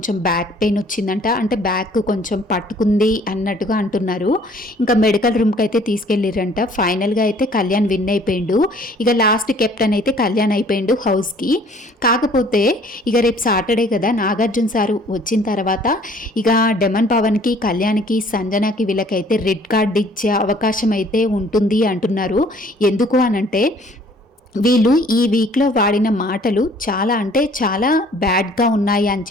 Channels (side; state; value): both; normal; correlation 0.56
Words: బ్యాక్ పెయిన్ వచ్చిందంట. అంటే బ్యాక్ కొంచెం పట్టుకుంది అన్నట్టుగా అంటున్నారు. ఇంకా మెడికల్ రూమ్కి అయితే తీసుకెళ్ళిరంట. ఫైనల్గా అయితే కళ్యాణ్ విన్ అయిపోయిండు. ఇక లాస్ట్ కెప్టెన్ అయితే కళ్యాణ్ అయిపోయిండు హౌస్కి. కాకపోతే ఇక రేపు సాటర్డే కదా, నాగార్జున సారు వచ్చిన తర్వాత ఇక డెమన్ పవన్కి, కళ్యాణ్కి, సంజనాకి వీళ్ళకైతే రెడ్ కార్డ్ ఇచ్చే అవకాశం అయితే ఉంటుంది అంటున్నారు. ఎందుకు అనంటే వీళ్ళు ఈ వీక్లో వాడిన మాటలు చాలా అంటే చాలా బ్యాడ్గా ఉన్నాయి అని